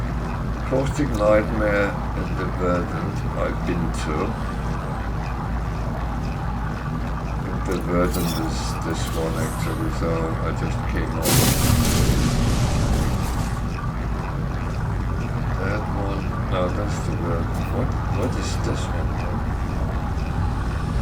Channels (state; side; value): identical; both; correlation 1.00